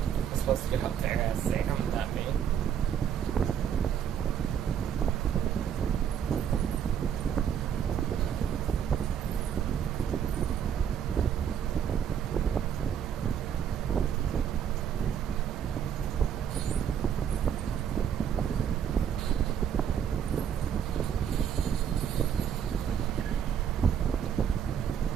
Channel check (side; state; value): left; quieter; 8.5 dB